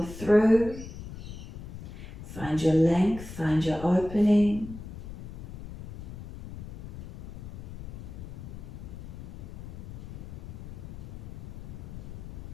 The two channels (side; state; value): left; noise; rumble, 12 dB below the sound